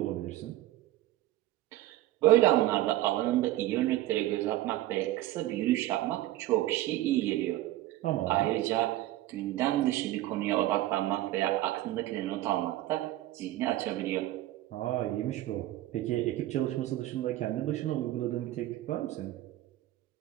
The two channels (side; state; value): left; quieter; 15.5 dB